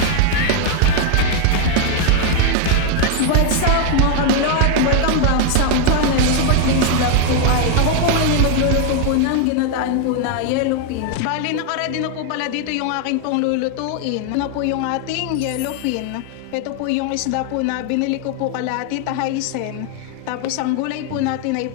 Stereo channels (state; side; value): different; both; correlation 0.00